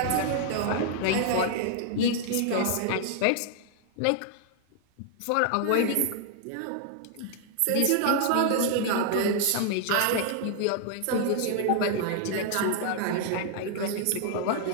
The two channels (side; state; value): both; different; correlation 0.00